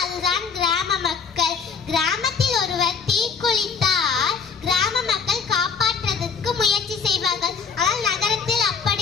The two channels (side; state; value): right; quieter; 5.7 dB